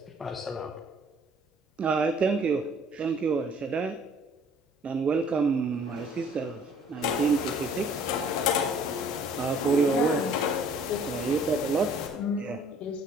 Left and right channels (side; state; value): both; normal; correlation 0.56